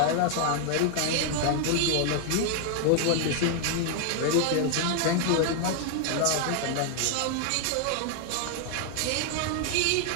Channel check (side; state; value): both; different; correlation 0.00